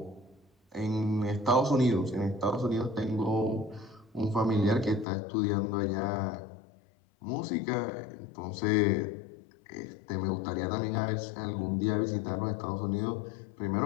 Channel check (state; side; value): drops out; right; at 5.1 s